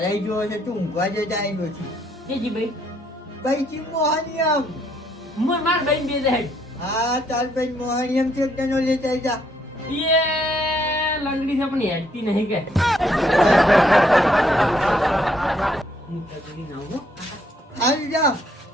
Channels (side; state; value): both; normal; correlation 0.70